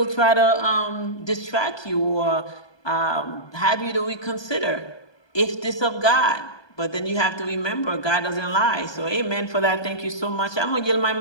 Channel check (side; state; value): right; late; 1.2 ms